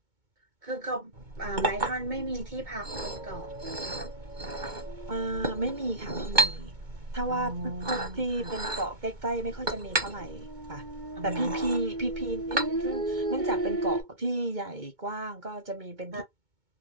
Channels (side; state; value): left; late; 2.2 ms